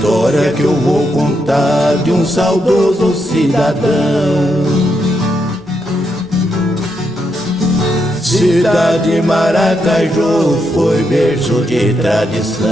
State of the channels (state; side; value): noise; left; hum, 28 dB below the sound